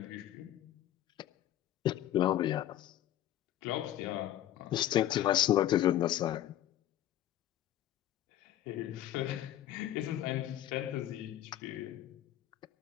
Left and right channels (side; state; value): right; quieter; 12.5 dB